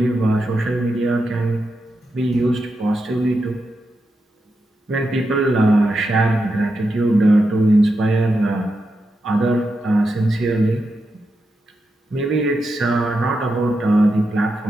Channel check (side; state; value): both; normal; correlation 0.87